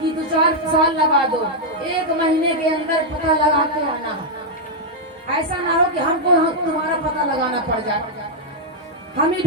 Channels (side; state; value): both; normal; correlation -0.03